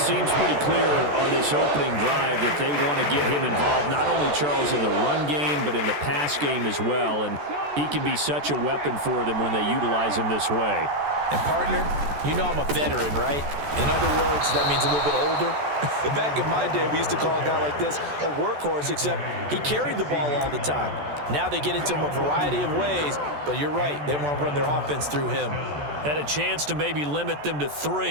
pretty clear on this opening drive that they want to get him involved, not only, Charles, in the run game, but in the pass game as well. And he can be such a weapon for them when they utilize him this way. And, partner, you know I'm a veteran, right? In other words, that means a little bit older. Back in my day, we used to call a guy like this a workhorse, except he carried the ball all the time. Now they get into him a variety of ways, but you're right. They want to run their offense through him. Had a chance to maybe limit them to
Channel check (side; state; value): left; late; 14 ms